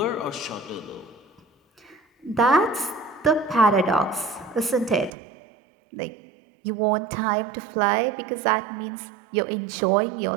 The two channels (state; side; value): drops out; left; at 5.1 s